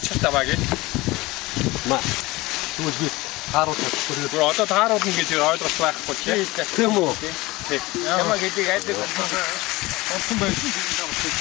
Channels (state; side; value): quieter; right; 20.8 dB